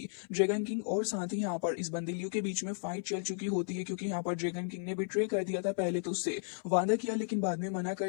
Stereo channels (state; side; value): silent; right; 55 dB below the other